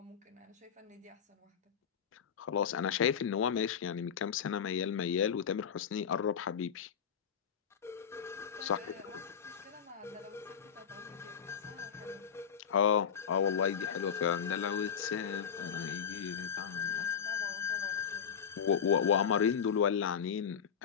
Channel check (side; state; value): right; quieter; 7.4 dB